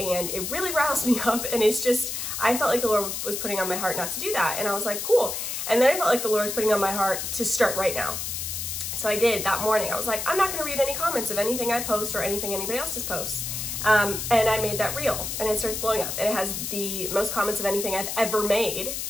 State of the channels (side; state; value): left; noise; hiss, 4 dB below the sound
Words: it really riles me up. And it's just, I felt like the Lord was putting on my heart not to do that. And I was like, cool. And then I felt like the Lord was putting on my heart to start right now. So I did that morning. I was like, I'm not gonna read any comments of anything I post or anything anybody else's posts. And I made that reel, and it starts blowing up. And it has the most comments of anything I've ever made.